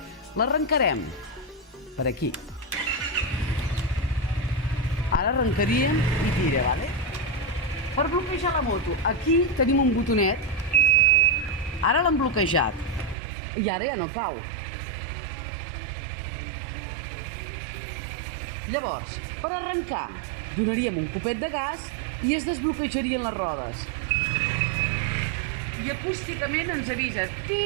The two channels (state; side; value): drops out; left; at 13.2 s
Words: L'arrencarem per aquí. Ara arrencaríem i tira, vale? Per bloquejar la moto, aquí tenim un botonet. Ara l'hem bloquejat. I ara ja no cau. Llavors, per arrencar, donaríem un copet de gas i es desbloquejarien les rodes. I acústicament ens avisa,